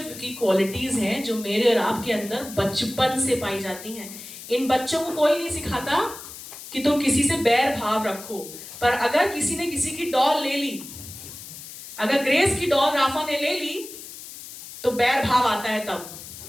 की क्वालिटीज हैं जो मेरे और आपके अंदर बचपन से पाई जाती हैं। इन बच्चों को कोई नहीं सिखाता कि तुम किसी से बैर भाव रखो, पर अगर किसी ने किसी की डॉल ले ली, अगर ग्रेस की डॉल राफा ने ले ली, तो बैर भाव आता है तब,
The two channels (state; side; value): noise; left; hiss, 13 dB below the sound